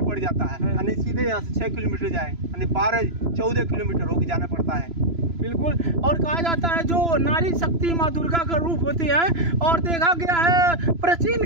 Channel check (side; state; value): left; late; 3.0 ms